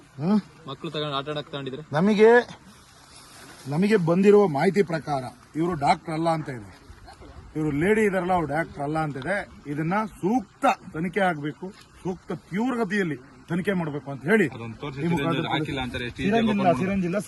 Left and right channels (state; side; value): identical; both; correlation 1.00